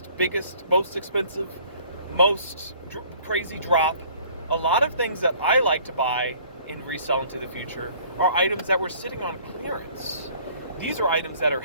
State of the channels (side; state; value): both; inverted; correlation -0.55